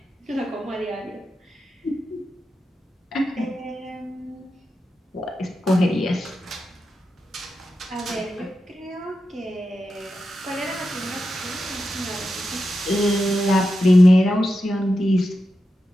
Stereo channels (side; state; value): both; normal; correlation 0.89